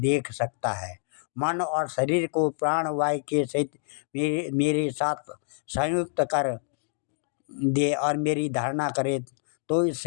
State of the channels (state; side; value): silent; right; digital silence